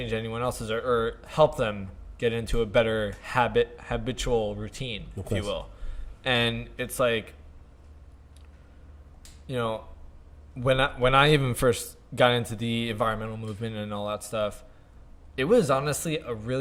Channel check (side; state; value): both; identical; correlation 1.00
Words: anyone else's or help them get into a better habitual routine, if you will. And it's like, when I even first got into the environmental movement and all that stuff, it was honestly